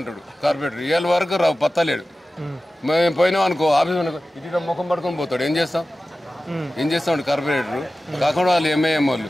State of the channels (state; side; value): normal; both; correlation 0.95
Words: కార్పెంటర్. ఇవాళ వరకు పత్తలేడు. మేము పోయినాం అనుకో ఆఫీస్ ఇటు ముఖం పడుకొని పోతాడు. ఏం చేస్తాం కార్పొరేటర్ కాకుండా వాళ్ళు ఎంఐఎం వాళ్ళు.